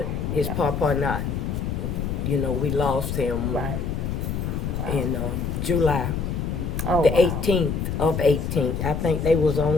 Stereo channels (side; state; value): left; noise; rumble, 2 dB below the sound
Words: his papa not. We lost him in July. The 18th of 18th. I think they was